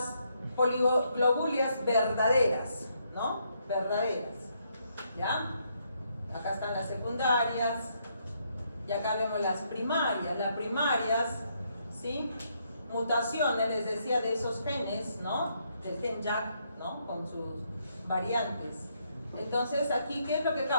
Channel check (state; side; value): inverted; both; correlation -0.74